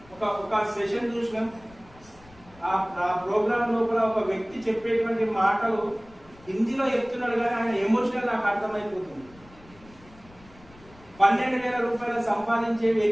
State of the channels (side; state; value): left; noise; rumble, 24 dB below the sound